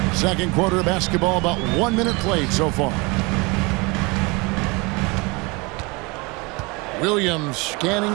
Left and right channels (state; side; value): quieter; left; 26.9 dB